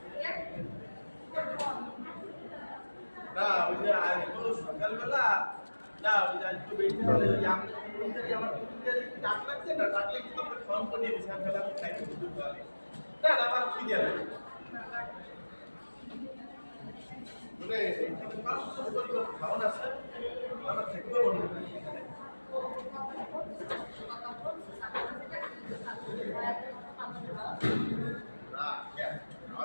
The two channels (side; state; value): both; inverted; correlation -1.00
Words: না ওই যে আজকে সকালবেলা না ওই যে আজকে বেশি হলে ওই আমার ডাক লাগছে না ডাকলে কিন্তু আমরা ফোন করে দিয়েছি সকালে আমি খাইতে শুরু করি না না আমার কি দেয় মানে খাওয়ান আছে আমার থাকবে মনে